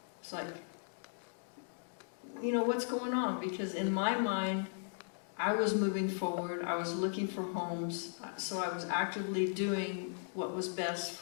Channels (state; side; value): silent; right; digital silence